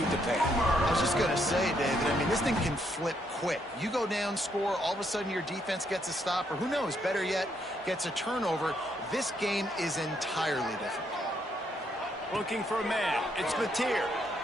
to panic. I was just going to say, David, I mean, this thing can flip quick. You go down, score, all of a sudden your defense gets a stop, or who knows, better yet, gets a turnover. This game is entirely different. Looking for a man. It's Mateer.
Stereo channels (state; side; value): normal; both; correlation 0.74